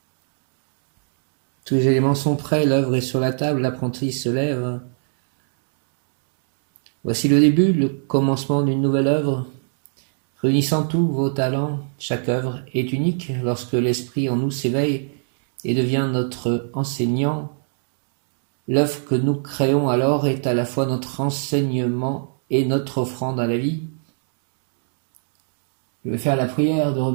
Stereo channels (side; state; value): left; silent; 65 dB below the other